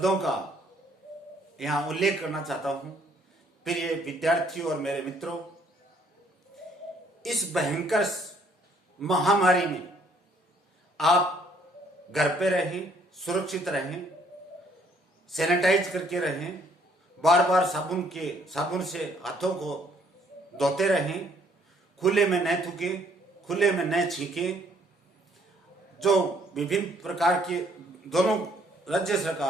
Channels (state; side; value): normal; both; correlation 0.64